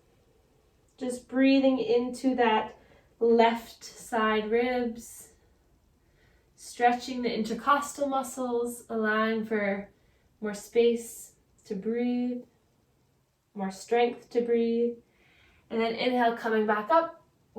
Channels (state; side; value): identical; both; correlation 1.00